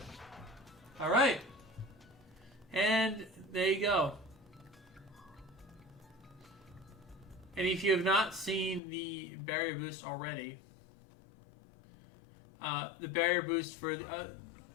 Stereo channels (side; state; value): right; drops out; at 8.8 s